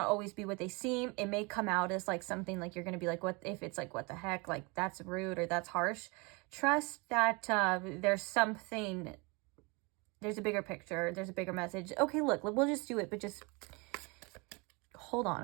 always be what they seem. It may come out as like something like you're going to be like, what if it's like, what the heck? Like that's rude or that's harsh. Trust that there's a bigger picture. There's a bigger message. Okay, look, we'll just do it, but just hold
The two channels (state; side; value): quieter; left; 28.6 dB